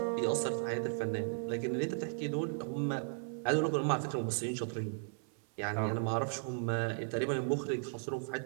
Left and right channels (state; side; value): silent; left; 54 dB below the other